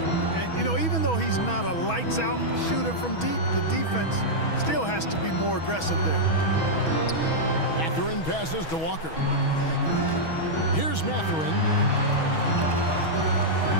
And, you know, even though he's not a lights-out shooter from deep, the defense still has to be more aggressive there. Mathurin passes to Walker. Here's Mathurin.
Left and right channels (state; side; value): late; right; 6.2 ms